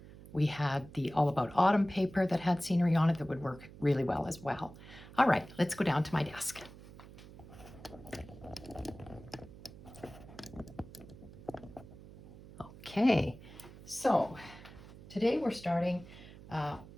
We had the All About Autumn paper that had scenery on it that would work really well as well. All right, let's go down to my desk. Okay, so today we're starting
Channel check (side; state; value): right; noise; hum, 17 dB below the sound